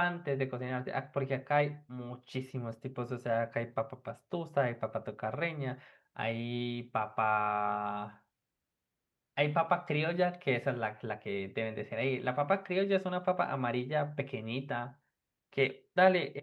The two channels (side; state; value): both; identical; correlation 1.00